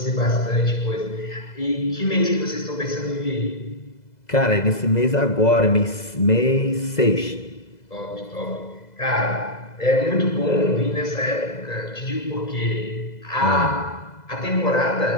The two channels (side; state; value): right; late; 2.0 ms